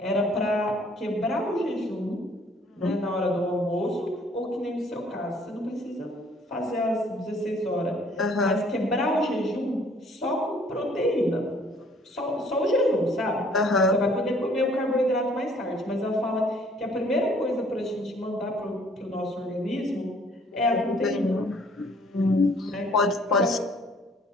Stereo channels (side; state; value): both; normal; correlation 0.59